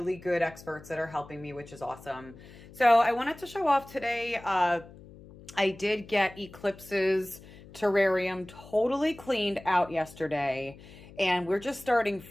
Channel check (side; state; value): left; noise; hum, 19 dB below the sound